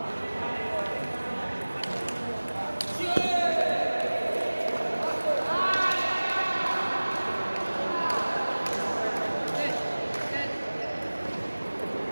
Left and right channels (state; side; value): inverted; both; correlation -1.00